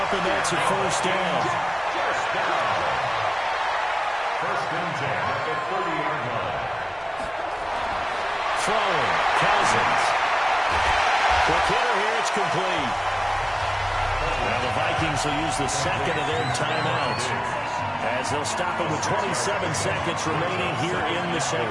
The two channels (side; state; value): both; identical; correlation 1.00